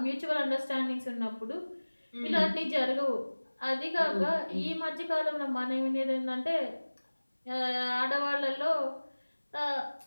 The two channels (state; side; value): inverted; both; correlation -1.00